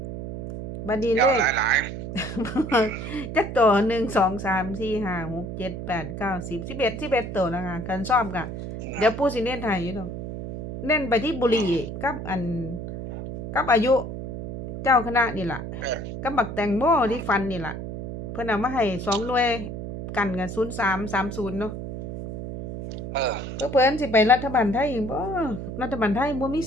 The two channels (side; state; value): right; noise; hum, 7 dB below the sound